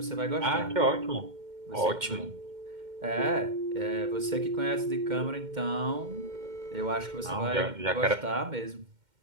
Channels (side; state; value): left; late; 2.1 ms